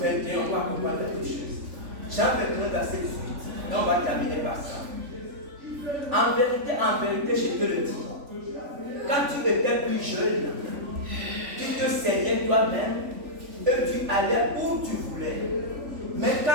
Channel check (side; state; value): left; late; 3.5 ms